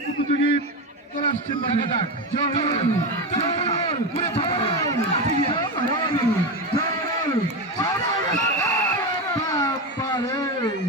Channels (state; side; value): normal; both; correlation 0.16